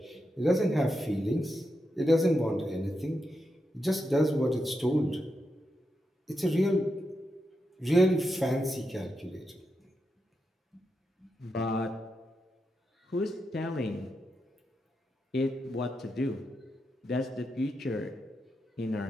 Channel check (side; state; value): both; normal; correlation 0.86